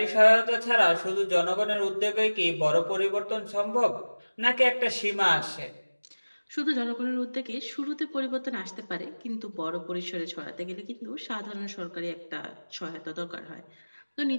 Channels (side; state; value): both; inverted; correlation -1.00